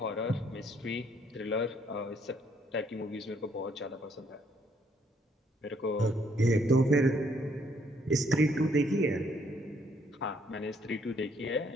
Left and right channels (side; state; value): both; normal; correlation 0.68